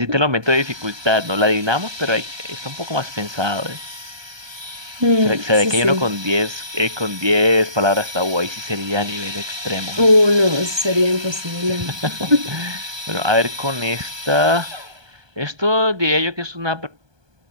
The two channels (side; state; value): left; late; 1.2 ms